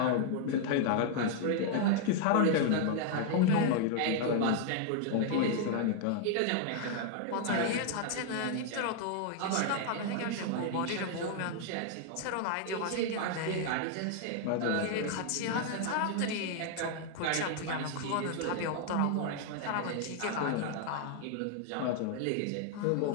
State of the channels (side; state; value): both; different; correlation 0.00